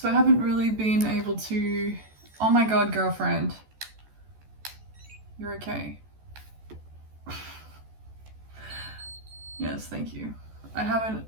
I haven't really been able to, oh my god, girlfriend, you're okay. Yes, thank you. I haven't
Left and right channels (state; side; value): late; left; 14 ms